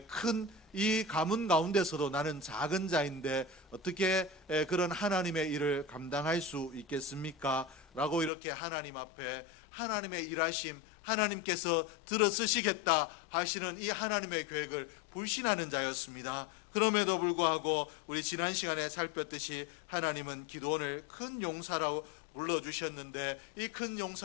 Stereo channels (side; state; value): right; drops out; at 8.3 s